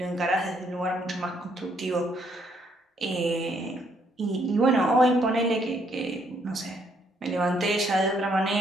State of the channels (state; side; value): normal; both; correlation 0.70